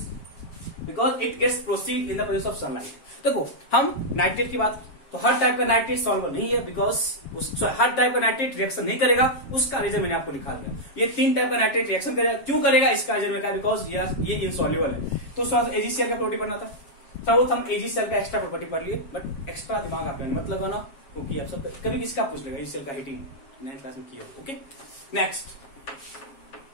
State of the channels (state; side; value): late; right; 7.5 ms